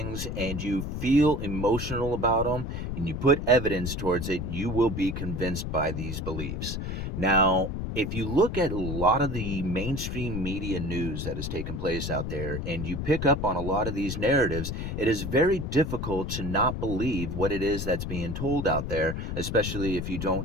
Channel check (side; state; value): left; noise; rumble, 4 dB below the sound